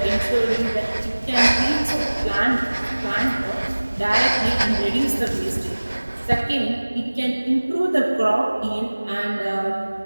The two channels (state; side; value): inverted; both; correlation -1.00